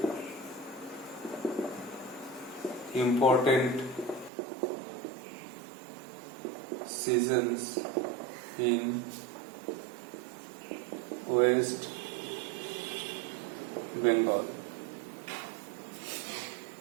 important seasons in West Bengal.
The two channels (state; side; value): drops out; left; at 4.3 s